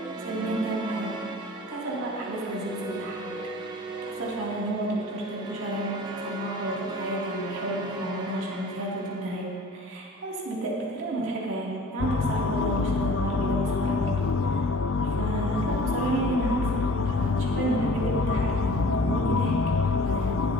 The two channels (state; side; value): normal; both; correlation 0.46